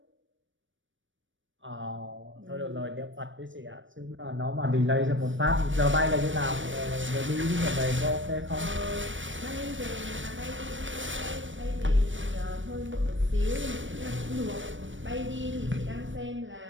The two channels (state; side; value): late; left; 0.56 ms